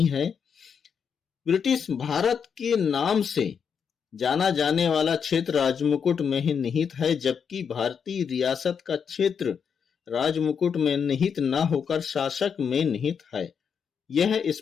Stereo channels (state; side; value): quieter; right; 6.9 dB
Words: है। ब्रिटिश भारत के नाम से जाना जाने वाला क्षेत्र राजमुकुट में ही निहित है, जबकि भारतीय रियासत का क्षेत्र राजमुकुट में निहित न होकर शासक में निहित है। यह